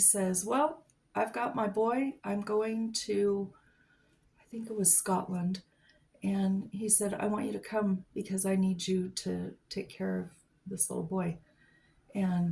"Well, I've got my boy. I'm going to, I think it was Scotland." And he said, "I want you to come because I need you to take care of this little boy."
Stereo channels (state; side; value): identical; both; correlation 1.00